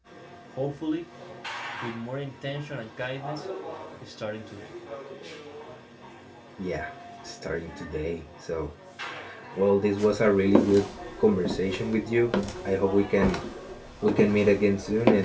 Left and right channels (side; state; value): both; identical; correlation 1.00